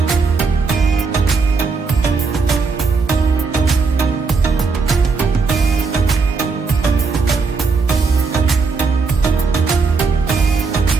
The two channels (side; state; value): left; quieter; 4.5 dB